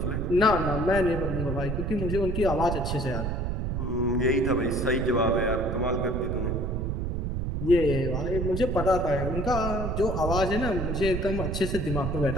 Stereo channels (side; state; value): right; noise; rumble, 2 dB below the sound